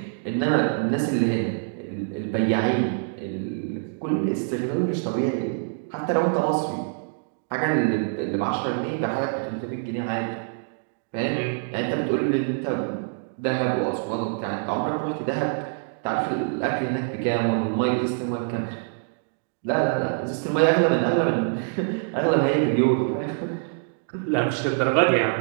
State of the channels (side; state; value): left; silent; digital silence